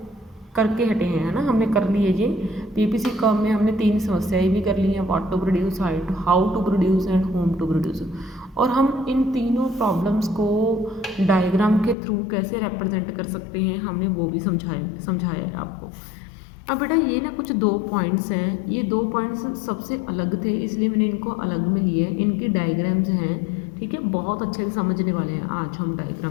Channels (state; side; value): drops out; right; at 12.0 s